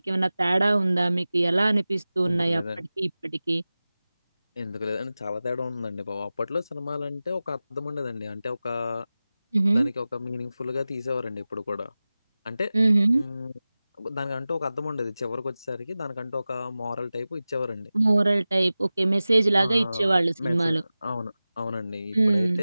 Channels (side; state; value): both; inverted; correlation -0.96